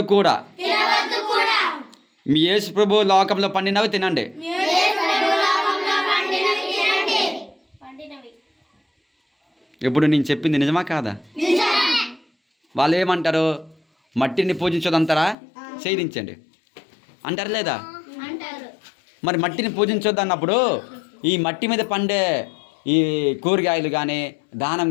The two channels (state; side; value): drops out; right; at 15.4 s